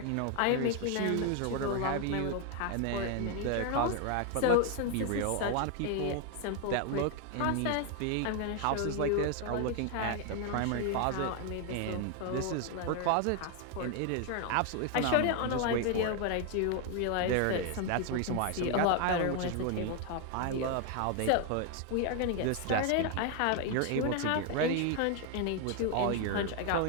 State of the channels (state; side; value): different; both; correlation 0.01